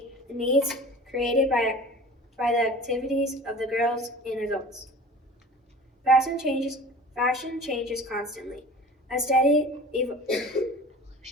the needs created by the activities of the girls and adults. Fashion changes constantly. A steady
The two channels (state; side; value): normal; both; correlation 0.41